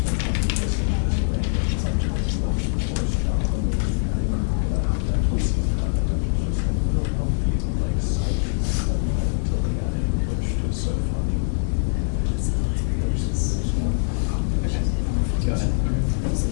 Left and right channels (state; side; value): silent; right; 63 dB below the other